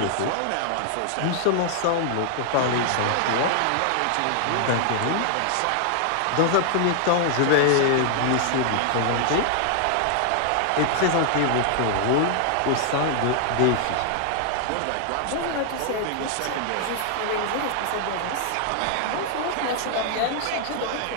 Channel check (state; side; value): different; both; correlation 0.00